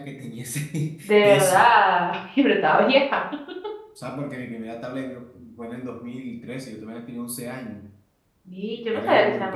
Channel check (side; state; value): both; identical; correlation 1.00